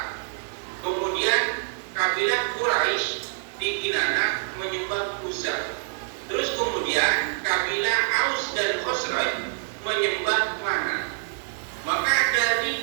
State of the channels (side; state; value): left; silent; digital silence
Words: Kemudian kabilah Quraisy di Kinana menyembah Uzza. Terus kemudian kabilah Aus dan Khosraj menyembah Mana. Maka dari